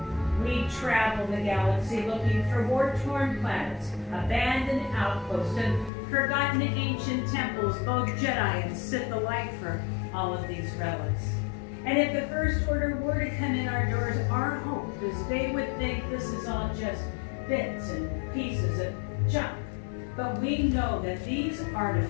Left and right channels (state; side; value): drops out; right; at 5.9 s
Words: We travel the galaxy looking for war-torn planets, abandoned outposts, and forgotten ancient temples, both Jedi and Sith alike for all of these relics. And if the First Order were to come in our doors, our hope is they would think this is all just bits and pieces of junk. But we know that these